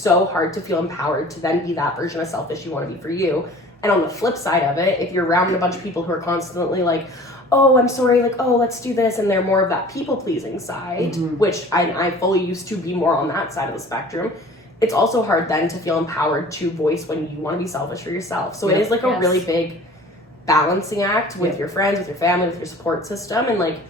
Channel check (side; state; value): both; normal; correlation 0.46